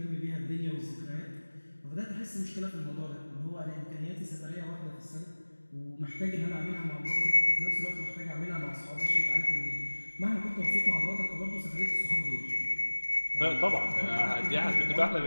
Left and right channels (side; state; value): both; inverted; correlation -1.00